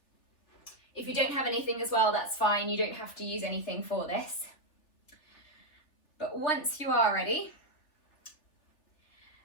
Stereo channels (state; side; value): late; right; 3.4 ms